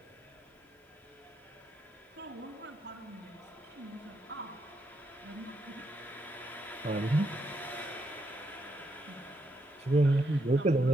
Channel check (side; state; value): both; normal; correlation 0.79